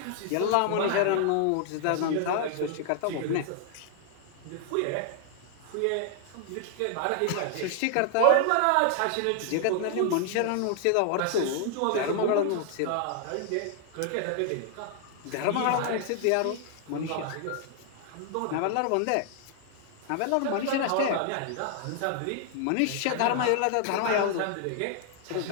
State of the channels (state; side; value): different; both; correlation 0.00